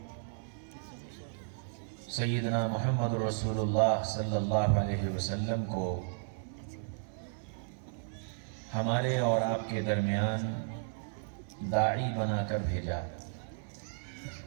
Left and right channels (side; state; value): left; silent; digital silence